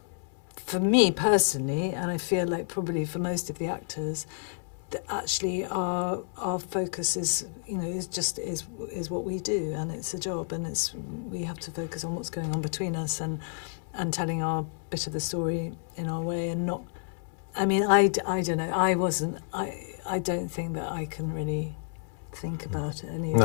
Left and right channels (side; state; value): right; silent; 58 dB below the other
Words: For me personally, and I feel like probably for most of the actors, that actually our focus is what we do, and it's a job, and we have to focus on what's going on between us and telling our bit of the story in our way, and not. I mean, I don't know. I don't think that I can really think about any of